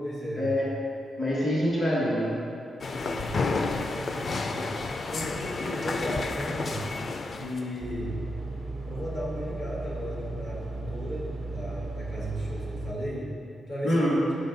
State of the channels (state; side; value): normal; both; correlation 0.85